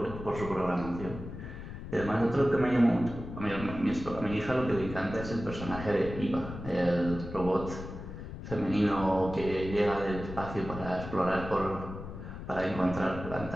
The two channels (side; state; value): left; noise; rumble, 10 dB below the sound